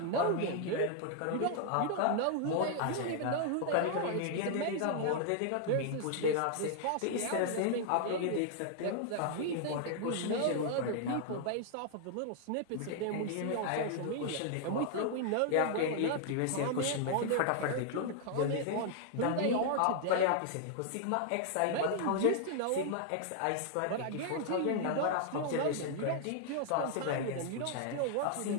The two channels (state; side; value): different; both; correlation 0.00